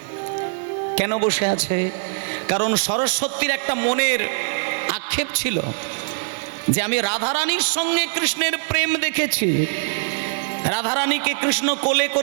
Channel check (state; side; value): silent; left; digital silence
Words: কেন বসে আছে? কারণ সরস্বতীর একটা মনের আক্ষেপ ছিল যে আমি রাধারানীর সঙ্গে কৃষ্ণের প্রেম দেখেছি। রাধারানীকে কৃষ্ণ কোলে